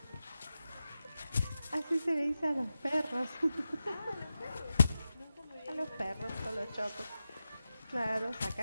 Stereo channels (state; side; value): inverted; both; correlation -0.92